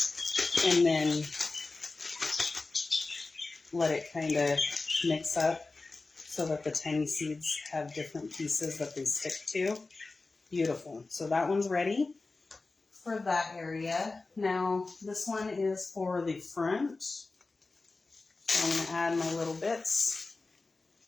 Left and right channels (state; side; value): quieter; right; 3.6 dB